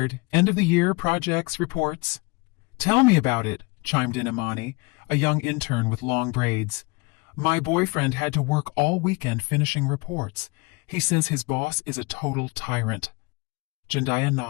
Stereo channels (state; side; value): quieter; right; 26.8 dB